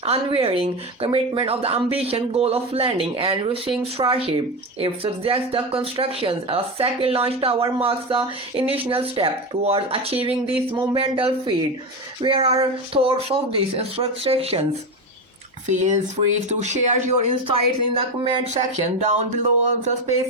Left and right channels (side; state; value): both; normal; correlation 0.18